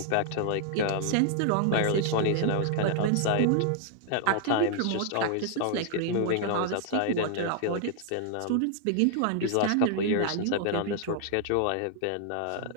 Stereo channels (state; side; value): different; both; correlation -0.01